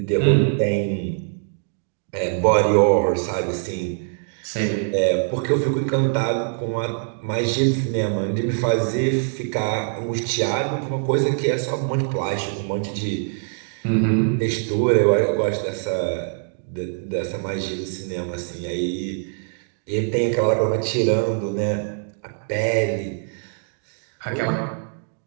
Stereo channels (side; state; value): left; silent; digital silence